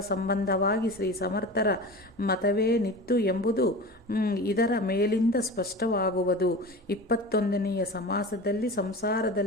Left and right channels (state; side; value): normal; both; correlation 0.32